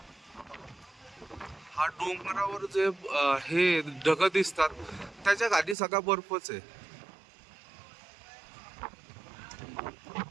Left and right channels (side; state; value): left; drops out; at 5.8 s